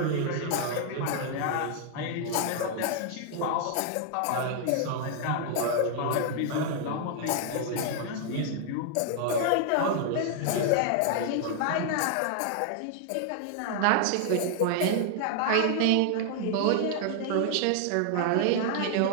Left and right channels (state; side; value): different; both; correlation 0.00